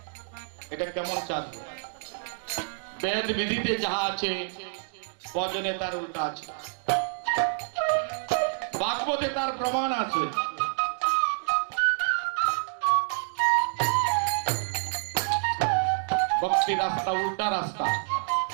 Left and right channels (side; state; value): left; silent; digital silence